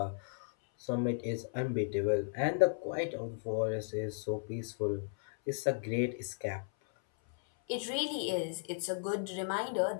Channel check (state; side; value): silent; right; 54 dB below the other